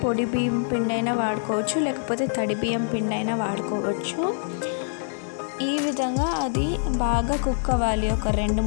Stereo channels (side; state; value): right; silent; digital silence